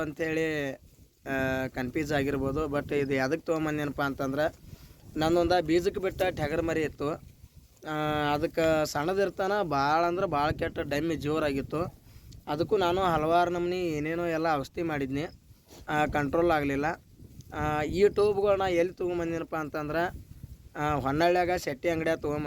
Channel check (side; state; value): both; identical; correlation 1.00